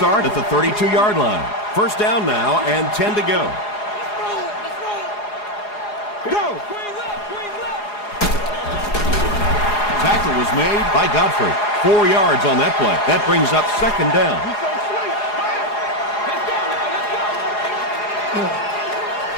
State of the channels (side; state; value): right; late; 4.8 ms